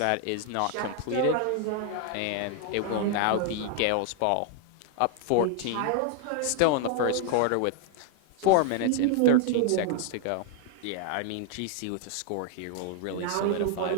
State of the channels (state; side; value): different; both; correlation 0.00